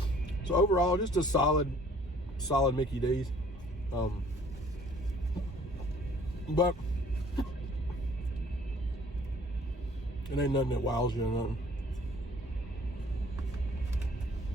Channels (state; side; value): normal; both; correlation 0.55